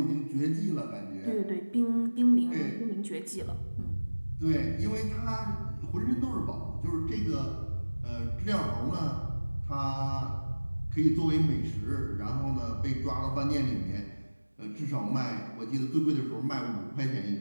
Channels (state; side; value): inverted; both; correlation -1.00